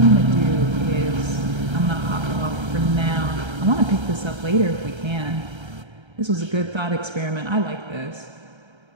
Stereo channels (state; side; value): late; left; 1.3 ms